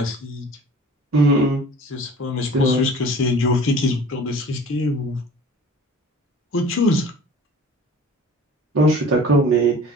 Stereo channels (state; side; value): normal; both; correlation 0.45